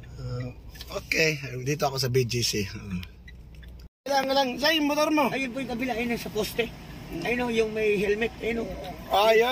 Okay, dito ako sa BGC. Kailangan lang. Sa'yo yung motor mo. Ayun po yung kabila, ayun sa poste. Ayun o, yung may helmet. Ayun o. Ah,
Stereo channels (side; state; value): both; identical; correlation 1.00